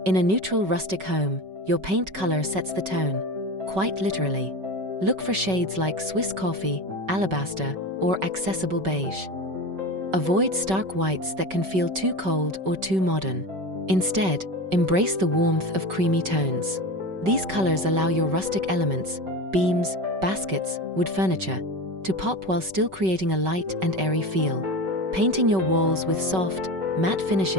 In a neutral rustic home, your paint color sets the tone, quite literally. Look for shades like Swiss coffee, alabaster, or accessible beige. Avoid stark whites that can feel too cold or too modern. Instead, embrace the warmth of creamy tones. These colors allow your rustic elements, beams, baskets, wood furniture, to pop while still creating a light and airy feel. Painting your walls with soft, matte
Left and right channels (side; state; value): left; late; 5.3 ms